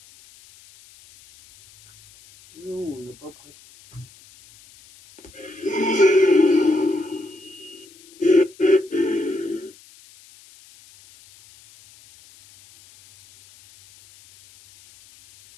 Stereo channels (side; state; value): left; noise; hiss, 25 dB below the sound